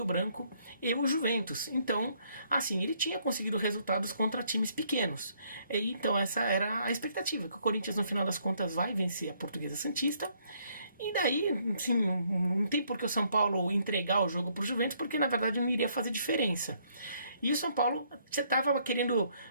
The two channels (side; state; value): both; inverted; correlation -0.68